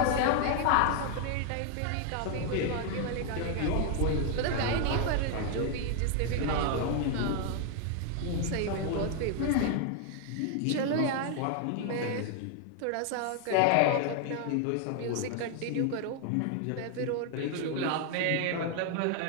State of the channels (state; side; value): different; both; correlation 0.00